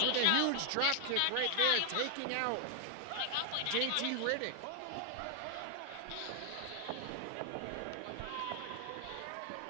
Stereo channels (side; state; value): both; different; correlation 0.00